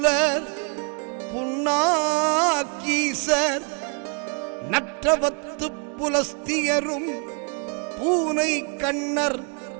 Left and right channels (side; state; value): left; quieter; 37.7 dB